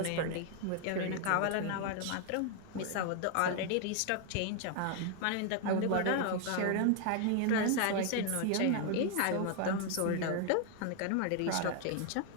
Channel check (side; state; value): both; different; correlation 0.00